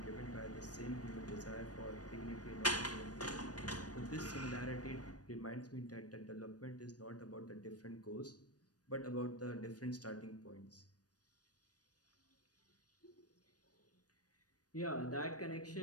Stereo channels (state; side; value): late; right; 0.68 ms